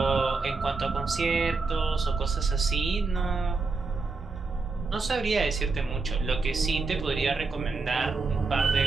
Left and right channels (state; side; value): quieter; left; 4.1 dB